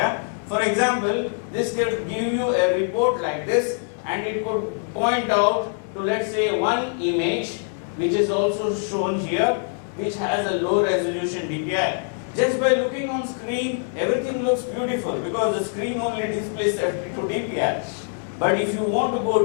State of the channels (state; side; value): silent; right; 63 dB below the other